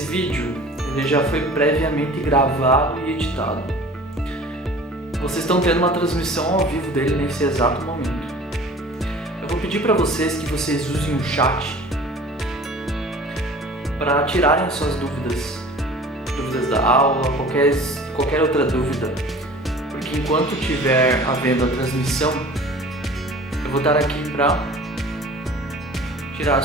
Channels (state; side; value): normal; both; correlation 0.44